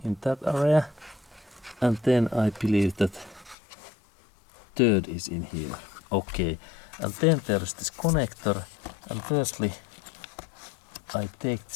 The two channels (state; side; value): drops out; right; at 3.6 s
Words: in that area, and then I believe that third is in here. Okay, and then there is this connector, and firstly I take